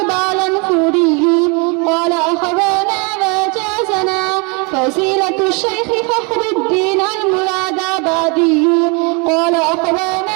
قال أخبانا وجازنا فصيلة الشيخ فخر الدين المرادابادي قال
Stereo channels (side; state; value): left; quieter; 31.4 dB